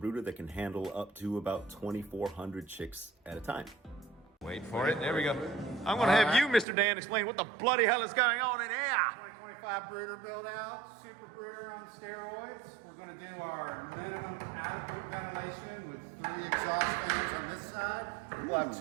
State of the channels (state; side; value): drops out; left; at 6.7 s